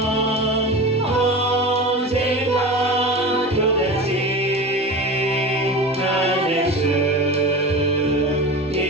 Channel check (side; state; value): both; normal; correlation 0.30